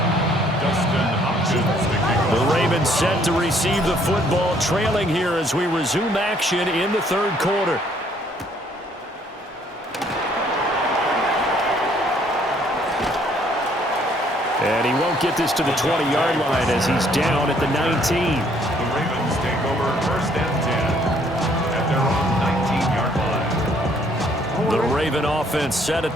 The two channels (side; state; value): both; normal; correlation 0.64